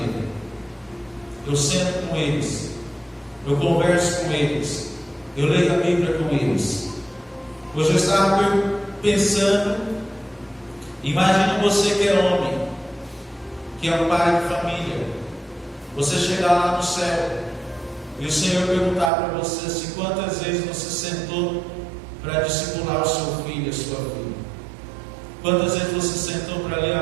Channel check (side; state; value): left; drops out; at 19.1 s